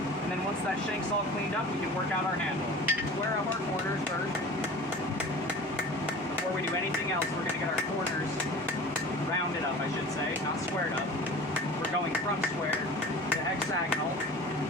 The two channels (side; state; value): both; normal; correlation 0.39